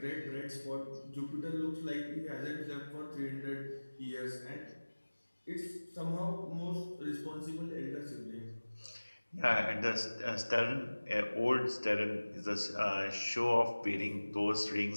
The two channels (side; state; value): both; inverted; correlation -1.00